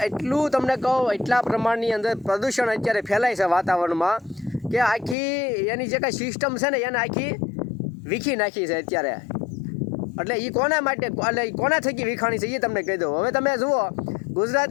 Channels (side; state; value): right; drops out; at 5.2 s